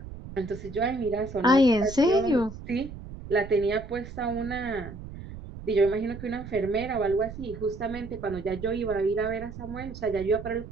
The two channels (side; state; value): right; noise; rumble, 12 dB below the sound